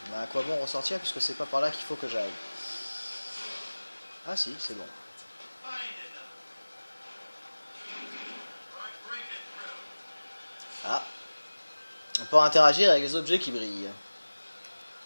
Mais à quoi bon ressortir puisque c'est pas par là qu'il faut que j'aille? Ah si, c'est bon. Ah. On peut interagir avec les objets qui brillent.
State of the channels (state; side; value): inverted; both; correlation -1.00